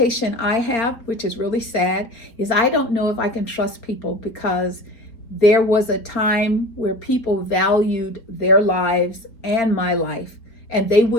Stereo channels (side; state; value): right; late; 4.0 ms